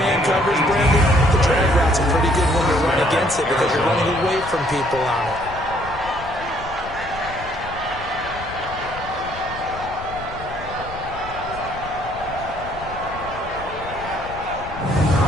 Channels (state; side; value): noise; left; rumble, 14 dB below the sound